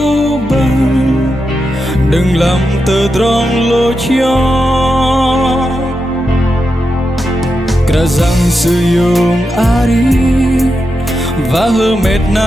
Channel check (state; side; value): normal; both; correlation 0.88